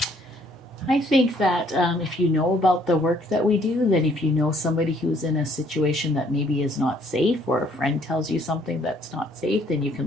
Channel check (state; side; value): normal; both; correlation 0.63